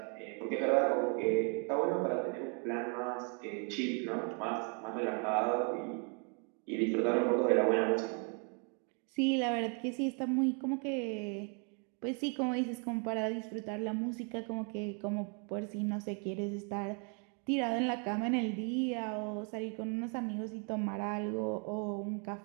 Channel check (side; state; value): left; quieter; 37.9 dB